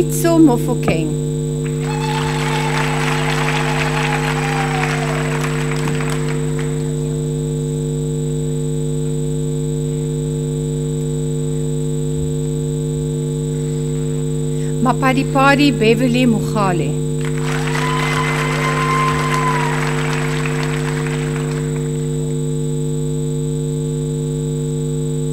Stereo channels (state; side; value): identical; both; correlation 1.00